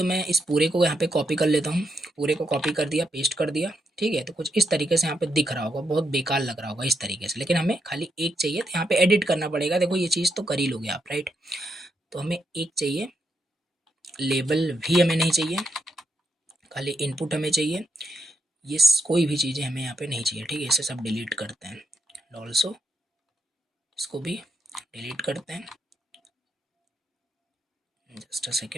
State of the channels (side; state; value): both; normal; correlation 0.80